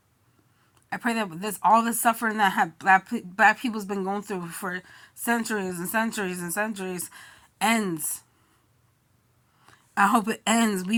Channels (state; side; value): identical; both; correlation 1.00